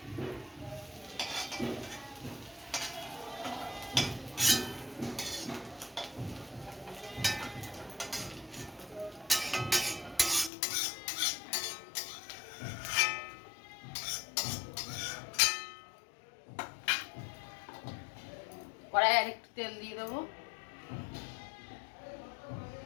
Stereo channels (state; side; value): drops out; right; at 10.5 s